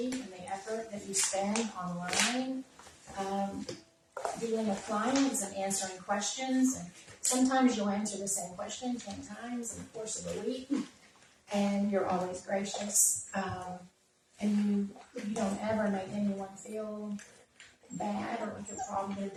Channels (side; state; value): both; identical; correlation 1.00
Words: and the effort that you spend online dealing with clients and answering questions. And sometimes you'll answer the same question 10 times in the course of a week, and you're always gracious. And you don't ever make anyone feel bad or like a problem